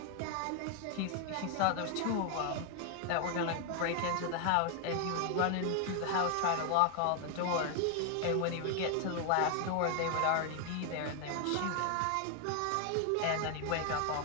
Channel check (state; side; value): different; both; correlation 0.01